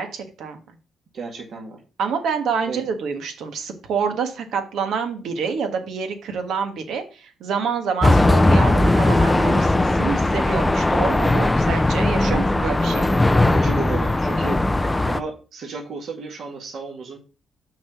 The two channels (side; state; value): both; normal; correlation 0.89